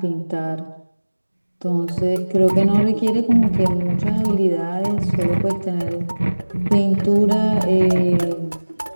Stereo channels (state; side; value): inverted; both; correlation -1.00